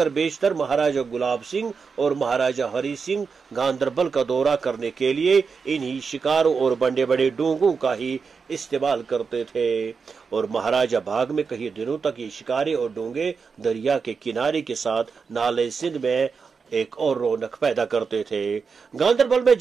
बेशतर महाराजा गुलाब सिंह और महाराजा हरी सिंह गांदरबल का दौरा करने के लिए इन्हीं शिकारों और बड़े बड़े डोंगों का ही इस्तेमाल करते थे, और महाराजा बाग में कई दिनों तक ये शिकारे और डोंगे दरिया के किनारे के साथ नाले सिंध में एक और रौनक पैदा करते थे। गांदरबल में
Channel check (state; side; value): quieter; left; 5.4 dB